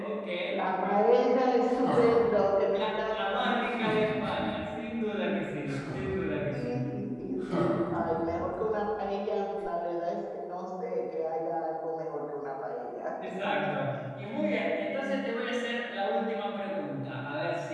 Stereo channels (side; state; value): both; identical; correlation 1.00